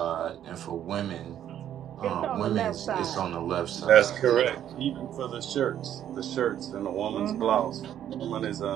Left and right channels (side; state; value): left; quieter; 10.7 dB